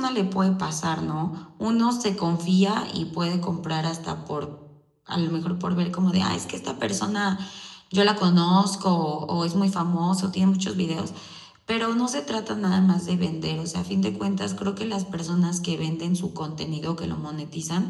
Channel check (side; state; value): both; identical; correlation 1.00